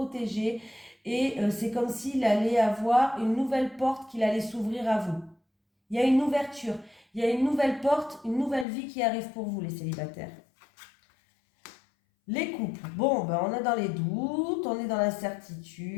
et c'est comme s'il allait avoir une nouvelle porte qu'il allait s'ouvrir à vous. Il y a une ouverture, il y a une nouvelle porte, une nouvelle vie qui arrive pour vous les célibataires. Les couples, bon, ben on est dans les doutes, on est dans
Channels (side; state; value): right; drops out; at 8.7 s